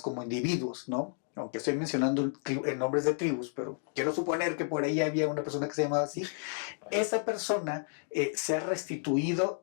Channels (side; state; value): right; silent; 57 dB below the other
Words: individuos, ¿no? Aunque estoy mencionando nombres de tribus, pero quiero suponer que por ahí había una persona que se llamaba así. Esa persona se ha restituido